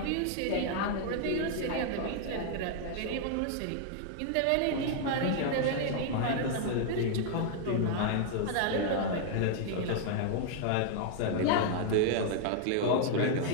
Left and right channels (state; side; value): different; both; correlation 0.00